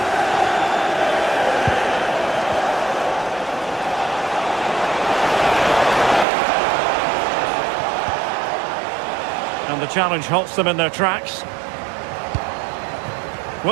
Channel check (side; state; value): left; drops out; at 6.2 s